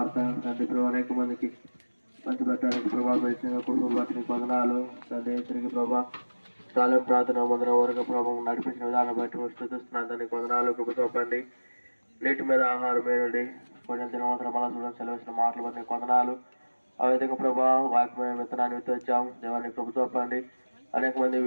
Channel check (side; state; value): both; inverted; correlation -1.00